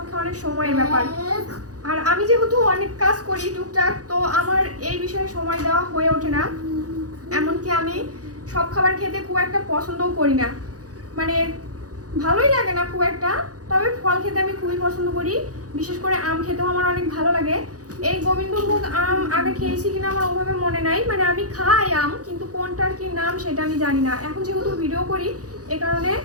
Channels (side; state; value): left; late; 0.67 ms